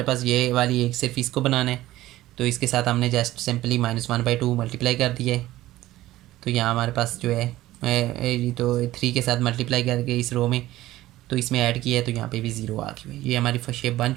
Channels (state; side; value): quieter; left; 15.8 dB